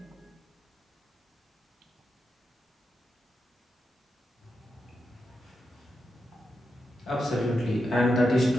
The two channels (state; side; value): normal; both; correlation 0.87